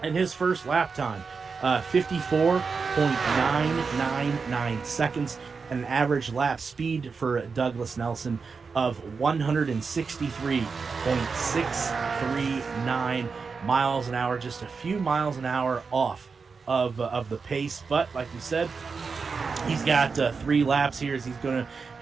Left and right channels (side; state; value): left; quieter; 5.0 dB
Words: and his first lap time 54.999 seconds, and an average lap speed for Douglas Nelson of 163.639 miles an hour, just a few miles an hour off of the pace. But like we said, he's got 3 laps here as he's